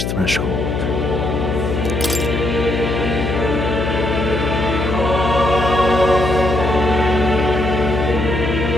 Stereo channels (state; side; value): noise; left; hum, 2 dB below the sound